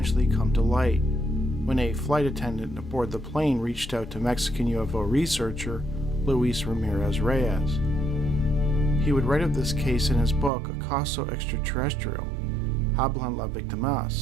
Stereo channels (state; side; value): drops out; left; at 10.5 s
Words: come to light when a flight attendant aboard the plane reached out to Mexican UFO researcher Luis Ramirez Reyes. He would write of this case in his book Acosta Extraterrestrial, Hablon